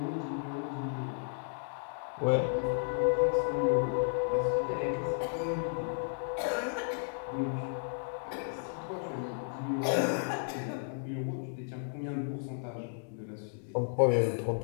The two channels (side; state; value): right; silent; digital silence